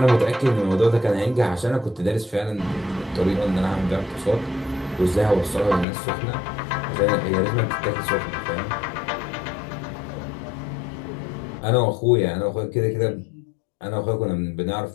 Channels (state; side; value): drops out; right; at 5.9 s